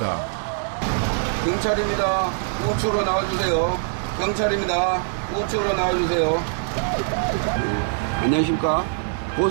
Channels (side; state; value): left; silent; 57 dB below the other